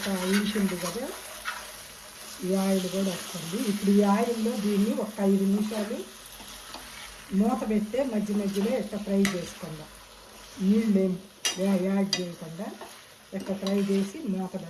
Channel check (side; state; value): both; identical; correlation 1.00